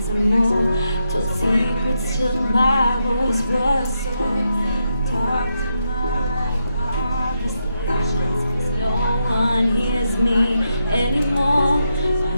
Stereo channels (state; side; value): inverted; both; correlation -0.82